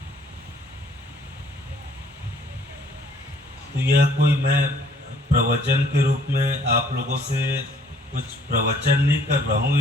तो यह कोई मैं प्रवचन के रूप में आप लोगों से कुछ प्रवचन नहीं कर रहा हूँ,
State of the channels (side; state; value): both; normal; correlation 0.60